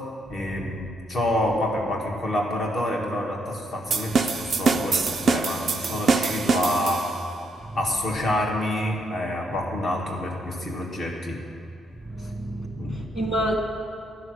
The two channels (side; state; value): both; normal; correlation 0.75